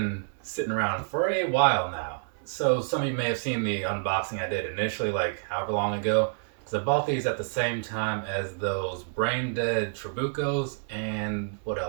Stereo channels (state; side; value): silent; left; 57 dB below the other